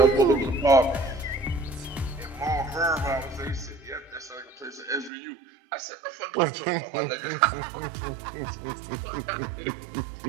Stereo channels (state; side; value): drops out; left; at 5.1 s